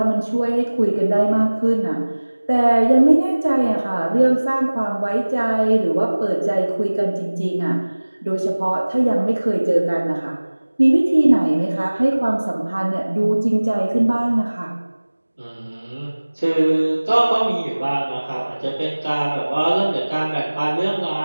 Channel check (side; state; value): both; inverted; correlation -1.00